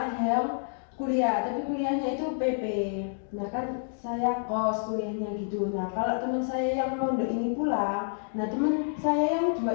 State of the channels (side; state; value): right; silent; digital silence